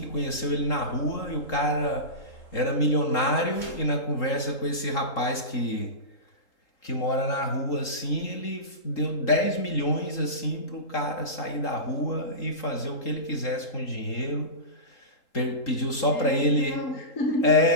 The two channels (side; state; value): right; late; 3.8 ms